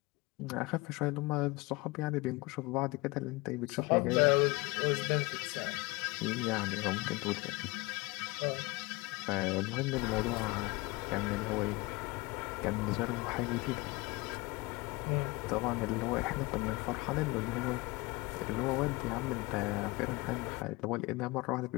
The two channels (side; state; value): right; quieter; 23.9 dB